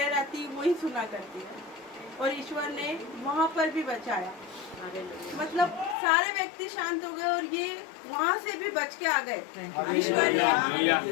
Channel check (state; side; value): drops out; right; at 6.0 s